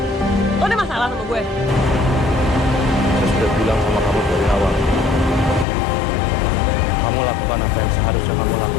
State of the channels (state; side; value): drops out; right; at 5.7 s